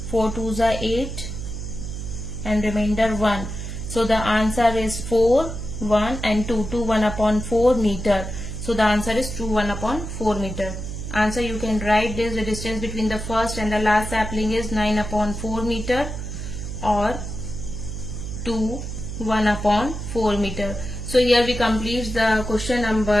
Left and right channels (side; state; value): right; noise; hum, 7 dB below the sound